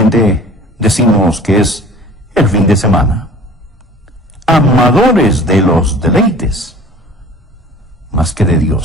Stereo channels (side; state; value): both; normal; correlation 0.46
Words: decimos que es el fin de semana. Amadores de los deleites, más que de